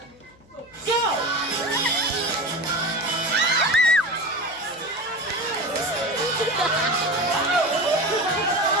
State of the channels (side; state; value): left; noise; hum, 28 dB below the sound